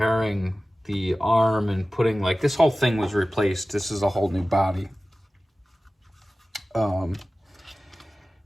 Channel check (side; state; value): both; normal; correlation 0.96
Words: the arm and putting, like, this whole thing was replaced. This is a whole new body.